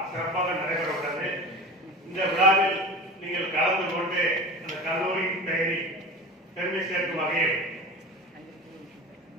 சிறப்பாக நடைபெற உள்ளது. இந்த விழாவில் நீங்கள் கலந்து கொண்டு அந்த கல்லூரியின் பெயரை பெருமை சேர்க்கும் வகையில்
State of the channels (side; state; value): both; normal; correlation 0.32